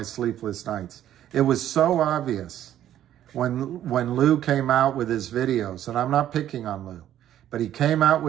sleepless nights. It was so obvious when Lou came out with his videos, and I'm not picking on Lou, but he came out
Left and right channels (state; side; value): quieter; left; 11.6 dB